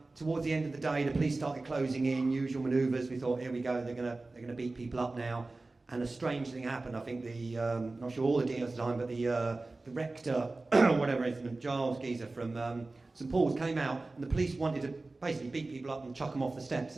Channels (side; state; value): left; quieter; 3.3 dB